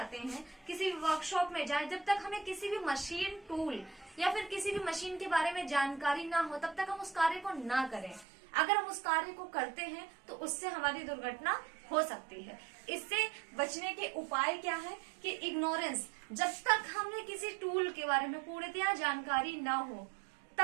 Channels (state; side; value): drops out; left; at 8.2 s